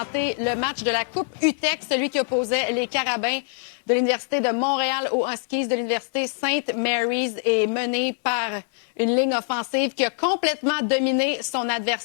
le match de la Coupe UTEC, celui qui opposait les Carabins de l'Université de Montréal aux Huskies de l'Université St. Mary's et mené par une ligne offensive qui a complètement dominé son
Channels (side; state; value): right; silent; digital silence